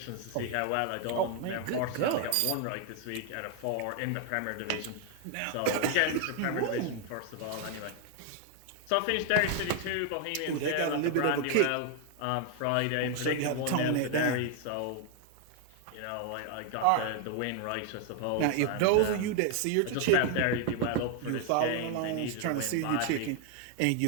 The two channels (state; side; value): different; both; correlation 0.00